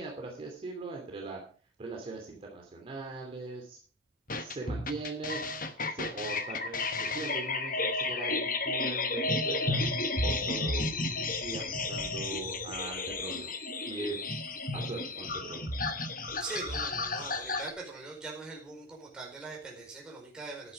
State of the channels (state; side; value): normal; both; correlation 0.19